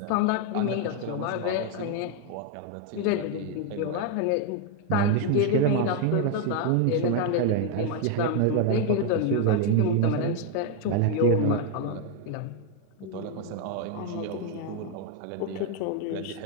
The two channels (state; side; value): different; both; correlation 0.01